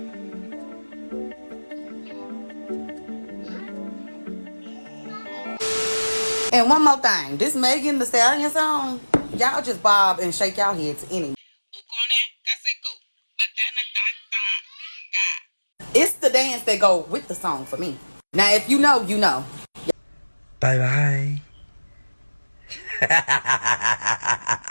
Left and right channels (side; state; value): both; inverted; correlation -1.00